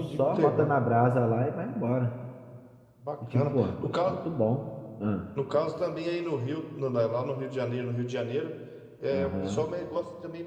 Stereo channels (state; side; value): identical; both; correlation 1.00